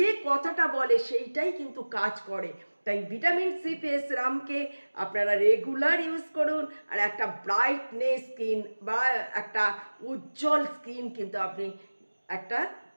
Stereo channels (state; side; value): inverted; both; correlation -1.00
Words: কথাটা বলে সেইটাই কিন্তু কাজ করে। তাই ভিটামিন সি ফেস সিরামকে আপনারা রেগুলার ইউজ করুন, আর একটা ব্রাইটনেস স্কিন বা একটা উজ্জ্বল স্কিন কিন্তু আপনি একটা